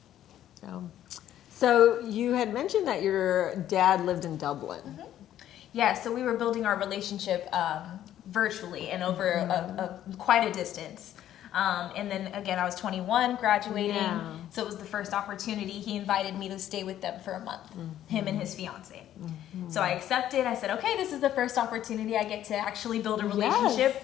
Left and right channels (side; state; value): right; quieter; 11.8 dB